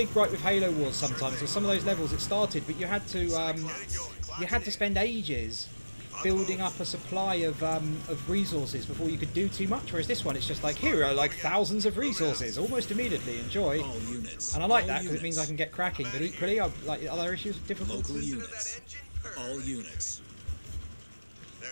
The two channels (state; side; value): inverted; both; correlation -1.00